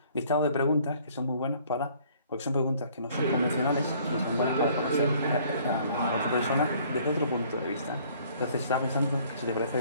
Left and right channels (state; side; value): inverted; both; correlation -0.58